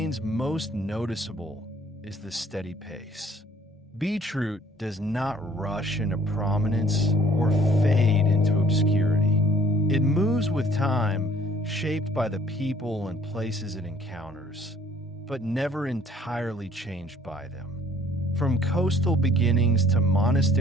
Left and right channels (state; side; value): normal; both; correlation 0.56